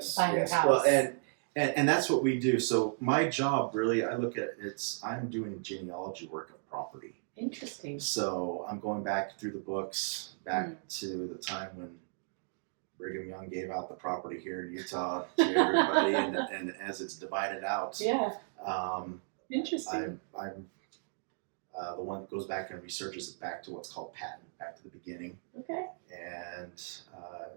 Well, and that's what we do. So my job really, I look at I'm doing genealogy work of property. Interesting. So I'm going back through the books, back to the time when Brigham Young gave out the property here in Utah to everybody, and as it's divided out. Interesting. I'm the one that goes back and researches it back to what's called patent, back to the beginning. And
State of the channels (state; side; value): silent; left; digital silence